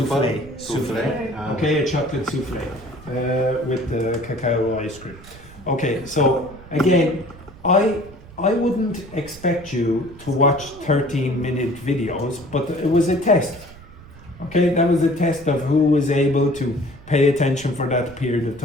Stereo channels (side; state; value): right; noise; rumble, 19 dB below the sound